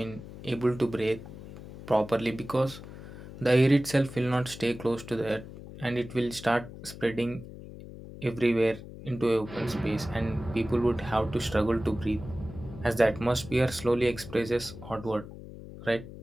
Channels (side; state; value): left; noise; hum, 14 dB below the sound